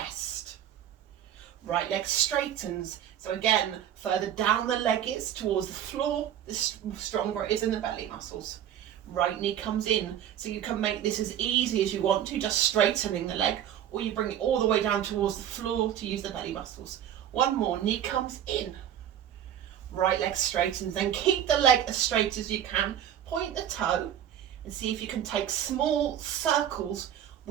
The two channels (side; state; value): left; quieter; 10.4 dB